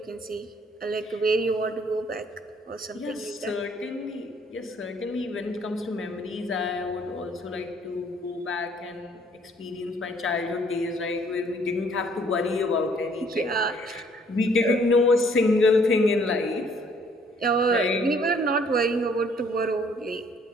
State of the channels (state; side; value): normal; both; correlation 0.62